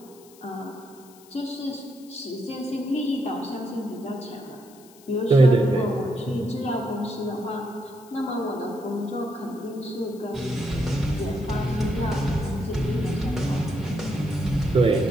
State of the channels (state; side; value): noise; left; hiss, 24 dB below the sound